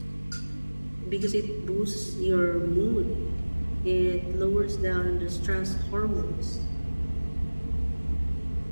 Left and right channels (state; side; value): inverted; both; correlation -1.00